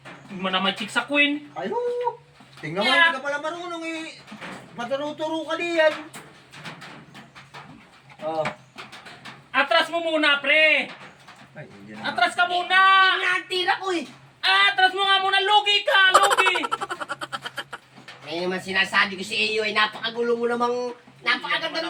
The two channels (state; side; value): identical; both; correlation 1.00